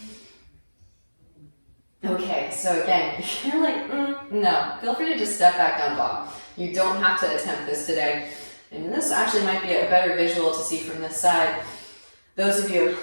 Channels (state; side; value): inverted; both; correlation -1.00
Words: Okay, so again, if you're like, no, feel free to just step back down dog. You don't have to attempt this today. And this actually might be a better visual to see from this side. Those of you